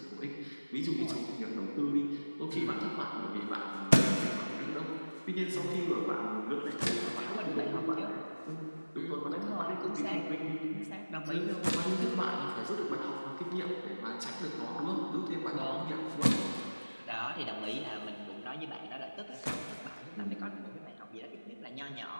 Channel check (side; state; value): both; inverted; correlation -1.00